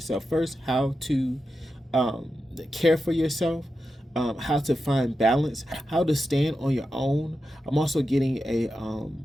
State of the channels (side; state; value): both; normal; correlation 0.90